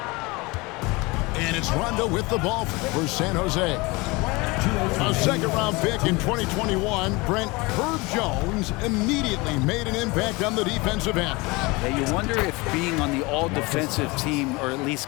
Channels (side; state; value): right; quieter; 24.5 dB